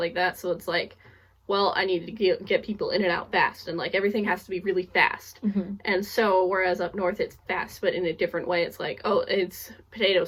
that, so it's like, well, I need to get people in and out fast, and like everything has to be really fast. And so whereas up north it's fast but in a different way. It's like, oh, it's potato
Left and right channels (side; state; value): both; identical; correlation 1.00